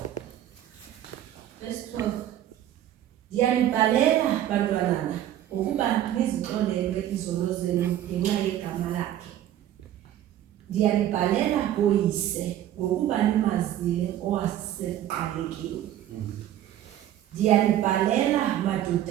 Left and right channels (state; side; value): quieter; left; 12.1 dB